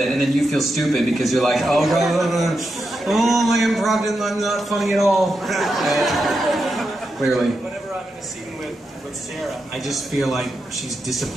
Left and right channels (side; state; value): both; normal; correlation 0.86